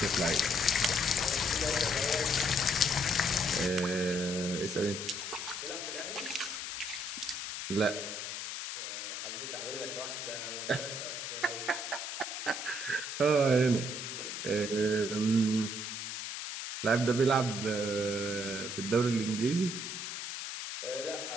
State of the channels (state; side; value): noise; left; hiss, 5 dB below the sound